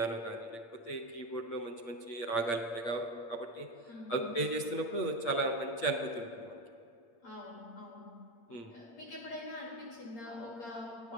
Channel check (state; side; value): late; right; 8.7 ms